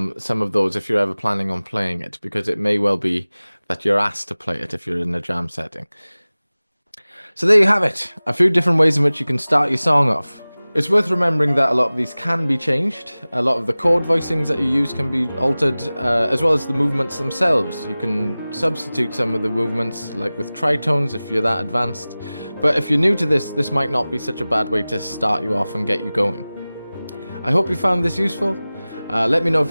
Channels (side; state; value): both; inverted; correlation -0.98